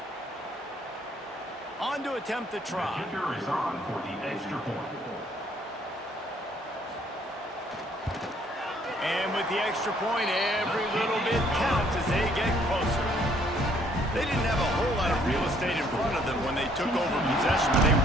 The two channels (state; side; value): normal; both; correlation 0.64